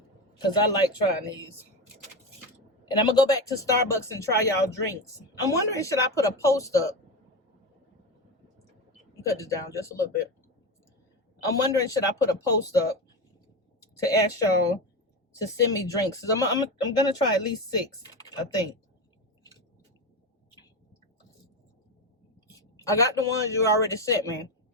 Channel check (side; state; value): both; normal; correlation 0.19